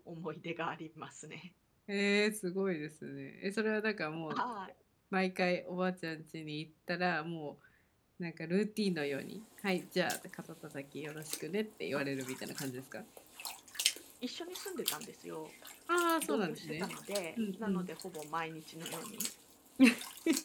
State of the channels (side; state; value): both; identical; correlation 1.00